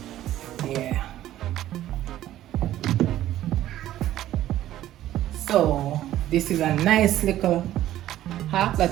Yeah. So this is a nice little hack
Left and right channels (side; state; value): left; quieter; 13.4 dB